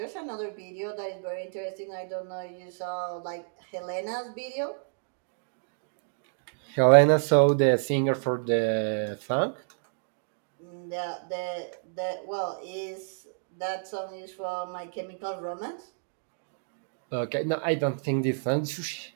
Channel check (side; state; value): left; silent; digital silence